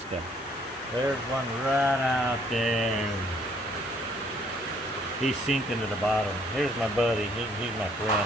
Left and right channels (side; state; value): both; normal; correlation 0.64